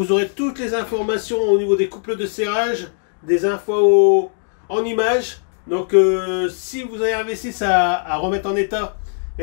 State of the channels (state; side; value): silent; right; digital silence